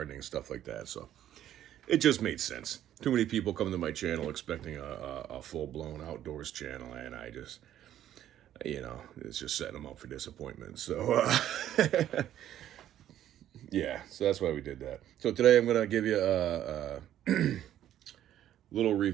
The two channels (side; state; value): left; quieter; 11.7 dB